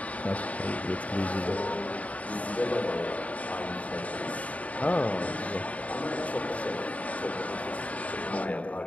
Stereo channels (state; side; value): late; right; 0.068 ms